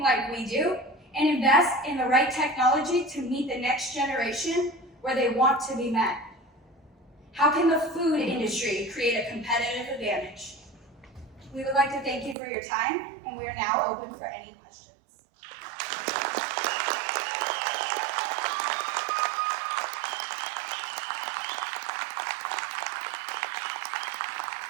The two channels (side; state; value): left; drops out; at 12.4 s